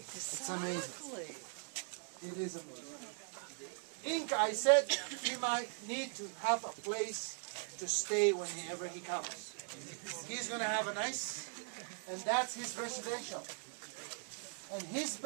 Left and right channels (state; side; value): silent; left; 51 dB below the other